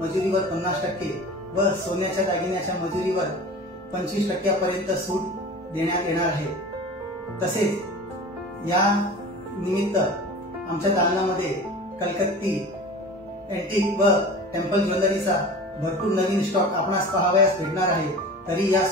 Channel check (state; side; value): normal; both; correlation 0.36